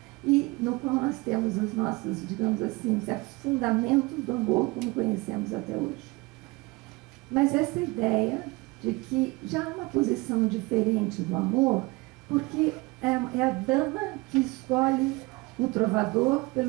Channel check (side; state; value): left; quieter; 23.9 dB